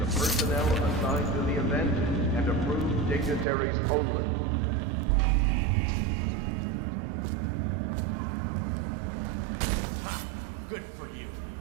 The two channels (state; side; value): drops out; left; at 3.5 s